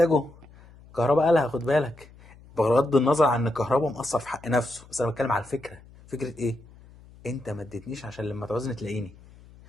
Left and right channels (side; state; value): left; noise; hum, 23 dB below the sound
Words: كهربا قالها، خد بالك، بغض النظر عن ان كهربا مقصر في حق نفسه، بس انا بتكلم على الفكره. فكره ايه، انت ما اديتنيش عشان لما تعوزني تلاقيني.